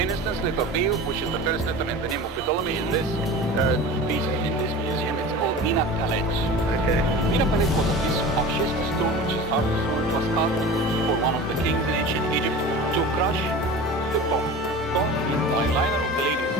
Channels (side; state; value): both; normal; correlation 0.35